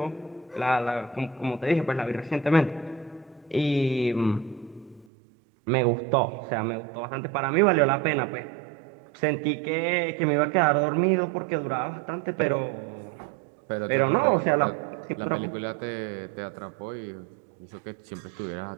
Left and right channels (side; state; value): left; drops out; at 5.1 s